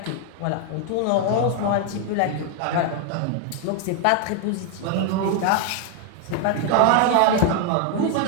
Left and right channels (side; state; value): both; different; correlation 0.01